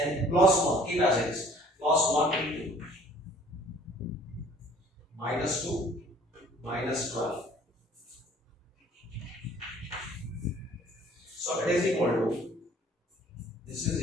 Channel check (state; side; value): normal; both; correlation 0.54